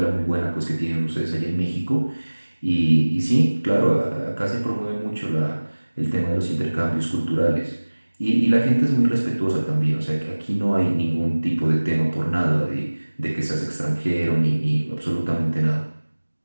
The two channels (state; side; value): inverted; both; correlation -1.00